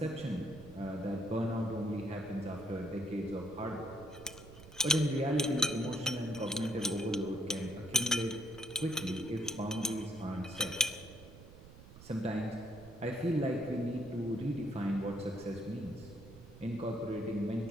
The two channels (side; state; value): right; noise; rumble, 18 dB below the sound